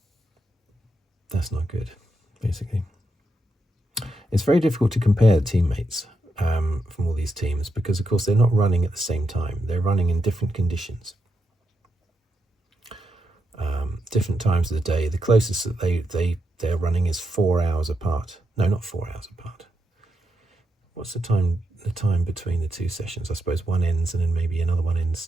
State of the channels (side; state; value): both; normal; correlation 0.83